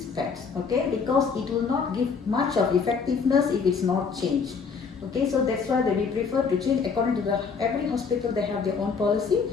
pads, okay? Because it will not give much of effectiveness if it's not changed. Okay, so that's why we prefer to change according to every hospital they have their own policy.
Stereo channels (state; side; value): quieter; right; 5.5 dB